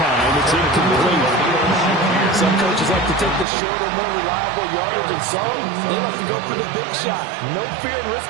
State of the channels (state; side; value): drops out; left; at 3.5 s